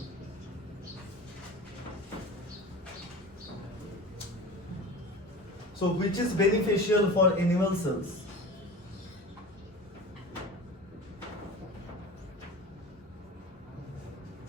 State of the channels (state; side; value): normal; both; correlation 0.34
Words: So which is beneficial for animal cells?